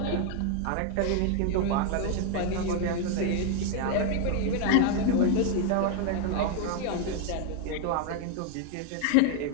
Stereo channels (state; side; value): different; both; correlation 0.00